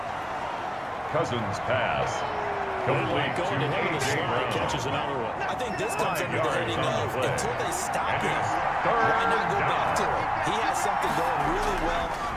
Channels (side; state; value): both; identical; correlation 1.00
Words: Cousins pass. Complete going to him in the slot. Catches another one. I think this comes under the heading of until they stop him, why not go back to it? He has something going really well.